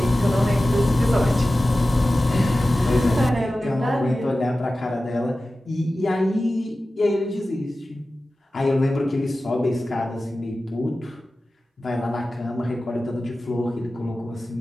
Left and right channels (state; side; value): normal; both; correlation 0.95